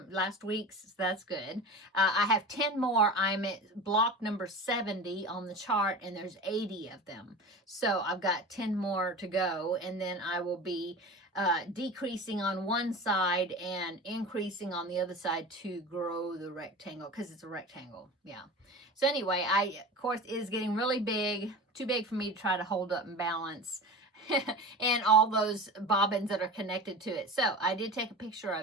week's. So that's good. I have 10 more. I'm at block number 70 on the chart, and there's 80 of them. So I've got 10 more to go, and then I will be decreasing on one side and increasing on the other side to grow the rectangle, because it's a rectangle. Yeah. So anyway, of course, it is getting really big, too big for me to try to hold up and balance. and all those bobbins that are connected to it. So I did take a picture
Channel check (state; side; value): normal; both; correlation 0.32